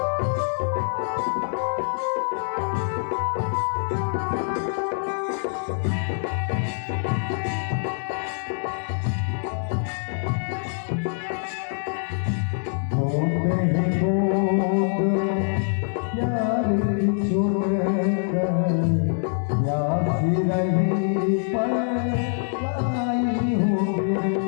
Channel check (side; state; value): right; silent; digital silence